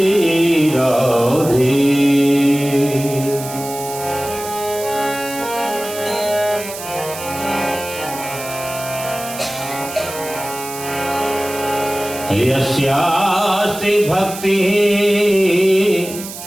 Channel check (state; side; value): noise; right; hiss, 11 dB below the sound